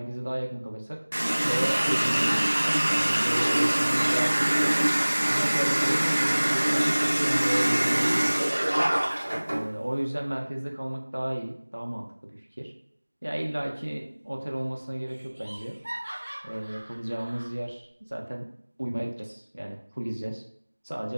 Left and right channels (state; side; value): inverted; both; correlation -1.00